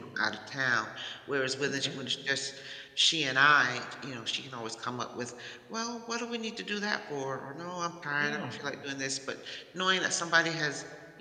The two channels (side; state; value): both; identical; correlation 1.00